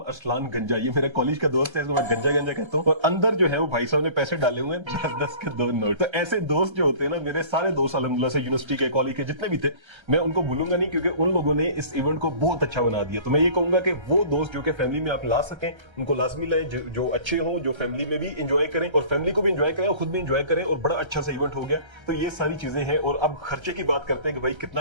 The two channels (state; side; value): late; left; 1.3 ms